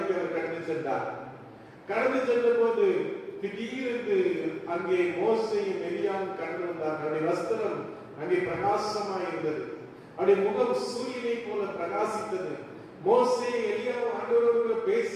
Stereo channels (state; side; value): identical; both; correlation 1.00